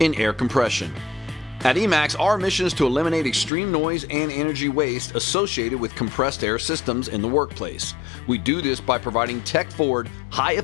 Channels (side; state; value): right; drops out; at 3.5 s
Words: air compression. At Emax, our mission is to eliminate extreme noise and energy waste associated with compressed air systems in the workplace. We do this by providing tech-forward,